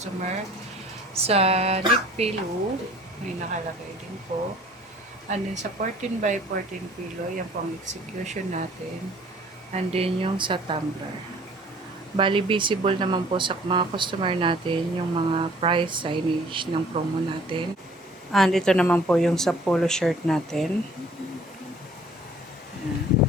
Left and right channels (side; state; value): both; normal; correlation 0.53